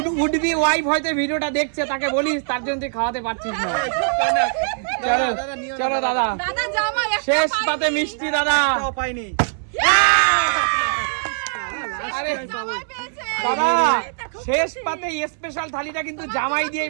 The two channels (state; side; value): silent; left; 65 dB below the other